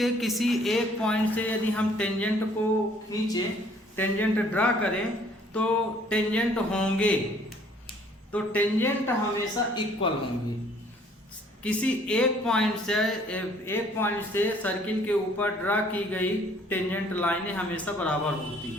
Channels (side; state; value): both; normal; correlation 0.59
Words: किसी एक पॉइंट से यदि हम टेंजेंट को खींचे, टेंजेंट ड्रा करें तो टेंजेंट होंगे, तो टेंजेंट हमेशा इक्वल होंगे। किसी एक पॉइंट से सर्किल के ऊपर ड्रा की गई टेंजेंट लाइनें हमेशा बराबर होती